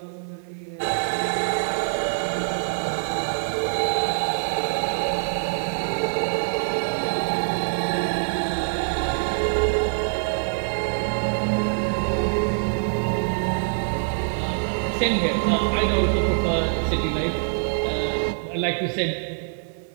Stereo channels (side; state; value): left; silent; 60 dB below the other